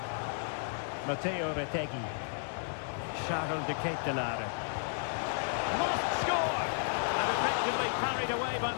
Matteo Retegui. Charles de Ketelare. Must score! And effectively parried away by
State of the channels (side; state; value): right; silent; digital silence